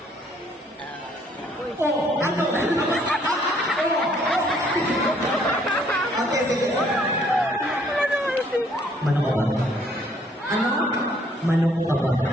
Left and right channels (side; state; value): both; normal; correlation 0.64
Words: Oh, ano? Okay, sige. Manok ka ba? Ano? Manok ka ba?